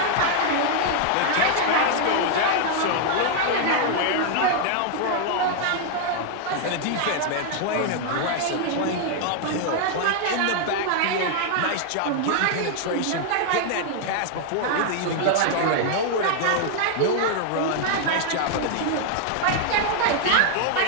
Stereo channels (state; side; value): different; both; correlation 0.00